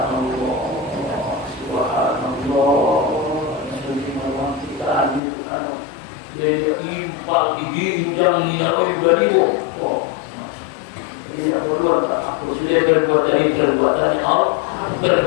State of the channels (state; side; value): drops out; right; at 5.2 s